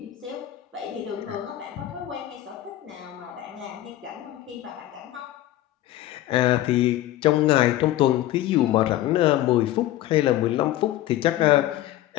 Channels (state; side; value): quieter; right; 14.3 dB